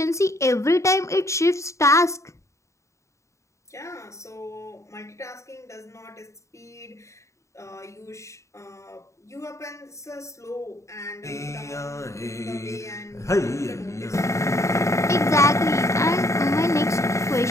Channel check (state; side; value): late; right; 0.14 ms